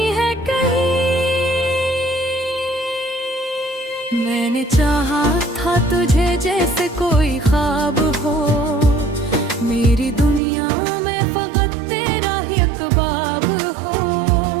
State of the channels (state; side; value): drops out; left; at 10.4 s